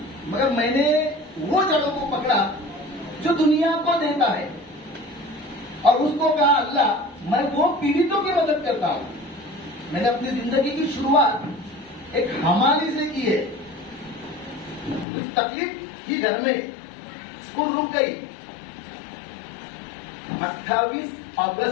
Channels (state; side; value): drops out; right; at 15.1 s